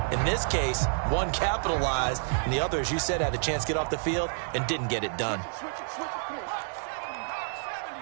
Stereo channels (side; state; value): left; silent; digital silence